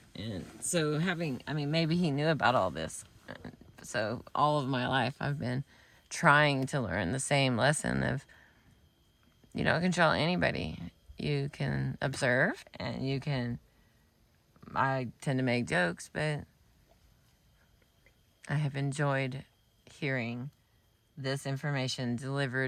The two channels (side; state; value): both; identical; correlation 1.00